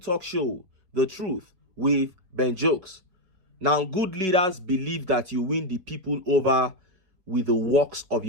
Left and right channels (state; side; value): late; left; 5.4 ms